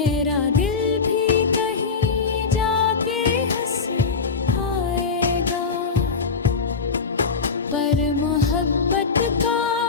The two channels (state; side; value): quieter; right; 5.0 dB